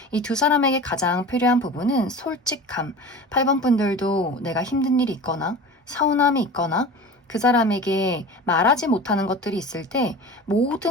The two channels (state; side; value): normal; both; correlation 0.35